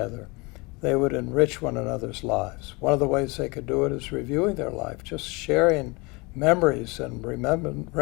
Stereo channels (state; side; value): quieter; right; 26.8 dB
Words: they would enrich one another's lives. One of the ways they could do it is reviewing their life, just sharing memories and